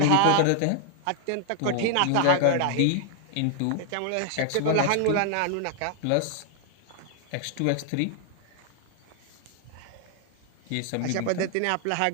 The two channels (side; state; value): both; different; correlation 0.00